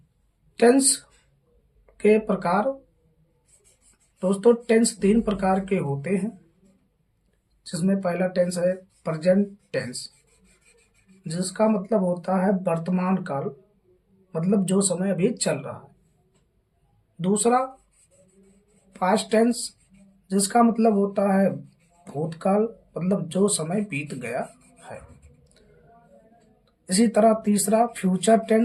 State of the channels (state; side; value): identical; both; correlation 1.00